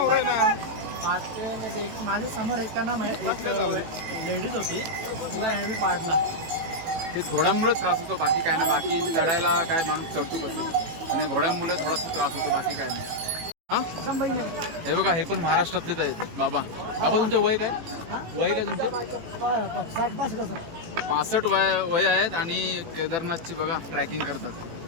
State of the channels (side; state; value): left; late; 18 ms